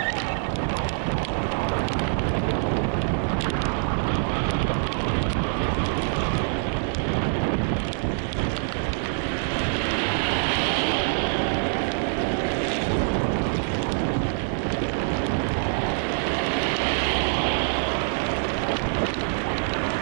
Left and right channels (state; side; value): silent; left; 62 dB below the other